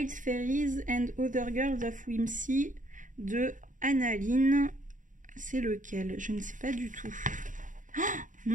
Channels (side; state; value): left; late; 0.38 ms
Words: Fairies and Other Girls of Whimsy de Annaline. C'est lequel? Je ne sais pas du tout. Oh,